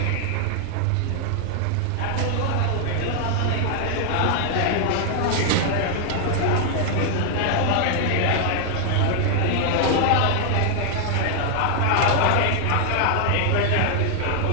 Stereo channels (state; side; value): different; both; correlation 0.00